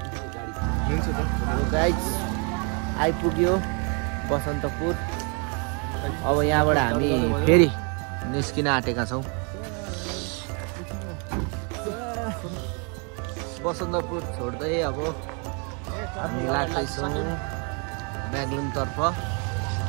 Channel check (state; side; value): quieter; left; 35.8 dB